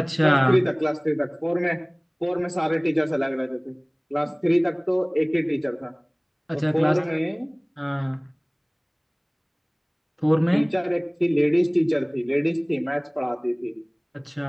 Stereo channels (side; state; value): both; identical; correlation 1.00